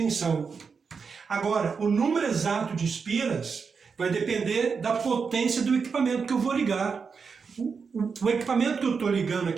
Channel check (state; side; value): quieter; left; 5.5 dB